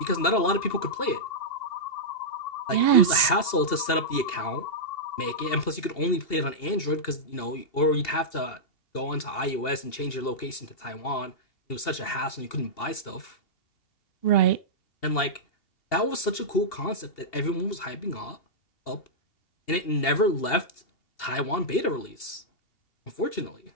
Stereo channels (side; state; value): right; late; 2.8 ms